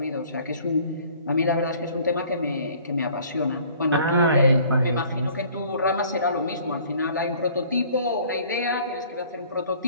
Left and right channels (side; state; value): both; inverted; correlation -0.53